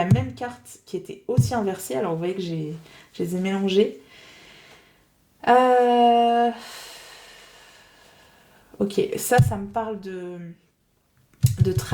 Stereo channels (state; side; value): identical; both; correlation 1.00